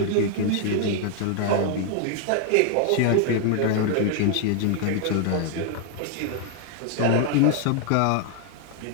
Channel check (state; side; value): different; both; correlation 0.00